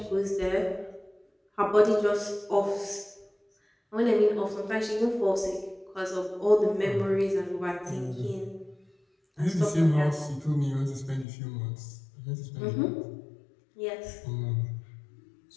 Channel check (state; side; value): drops out; right; at 11.2 s